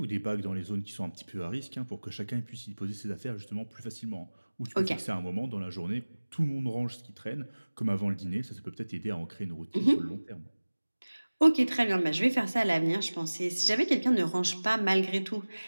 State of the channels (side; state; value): both; inverted; correlation -1.00